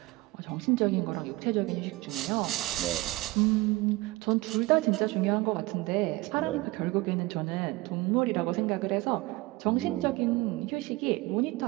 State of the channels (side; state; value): left; quieter; 20.9 dB